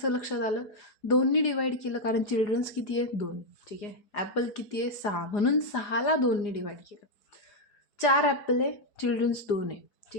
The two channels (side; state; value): right; late; 4.5 ms